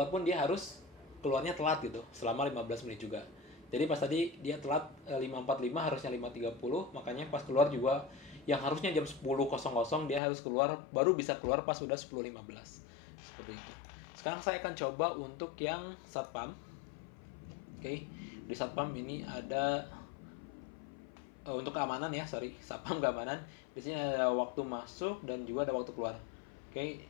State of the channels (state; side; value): drops out; right; at 10.2 s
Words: pun dia harus keluarnya telat gitu, selama 15 menit juga. Jadi pas tadi dia telat 5.45 harusnya 5.30, makanya pas keluar juga yang harusnya jam 10.00 dia harus keluar, baru bisa keluar pas sudah 10.15. Seperti itu. Sekarang saya akan coba untuk yang satpam. Oke, di satpam ini ada untuk keamanan ya, satpam keamanan. Di sini ada waktu masuk dan juga ada waktu keluar. Oke,